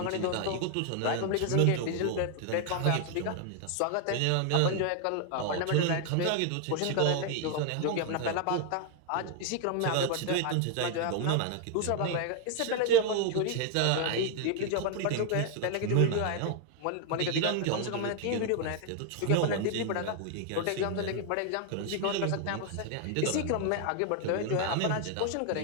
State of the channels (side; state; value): both; different; correlation 0.00